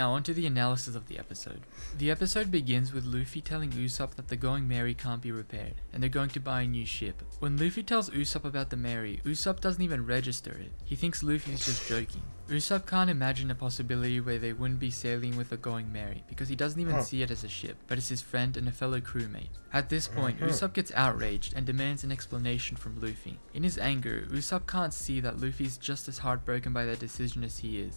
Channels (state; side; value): inverted; both; correlation -1.00